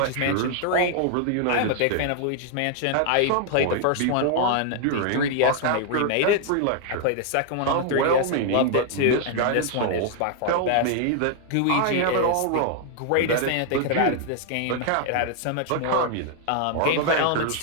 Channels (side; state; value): both; different; correlation 0.00